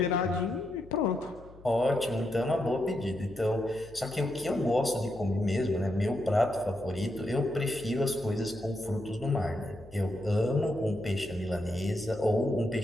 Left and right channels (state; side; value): noise; left; hum, 21 dB below the sound